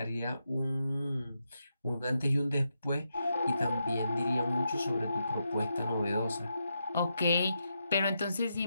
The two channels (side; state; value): both; inverted; correlation -0.84